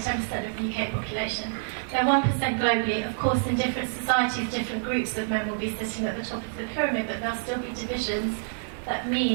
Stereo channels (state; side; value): silent; left; digital silence